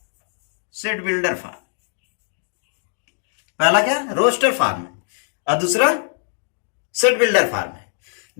set builder form. पहला क्या, रोस्टर फॉर्म है, और दूसरा सेट बिल्डर फॉर्म है।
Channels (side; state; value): right; silent; digital silence